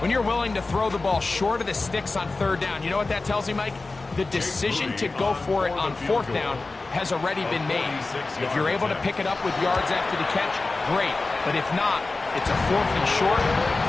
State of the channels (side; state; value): right; quieter; 3.5 dB